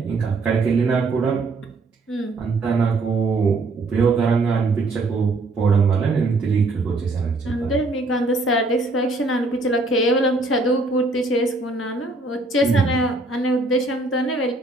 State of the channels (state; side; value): quieter; left; 3.2 dB